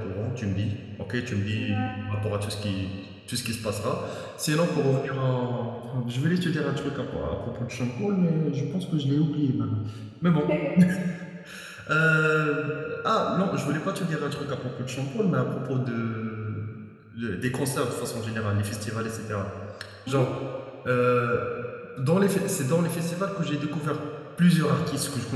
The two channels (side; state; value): both; identical; correlation 1.00